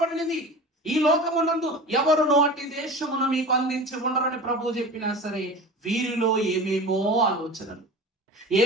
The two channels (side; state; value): both; normal; correlation 0.35